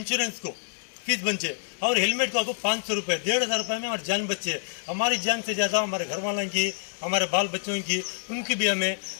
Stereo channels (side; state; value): right; silent; digital silence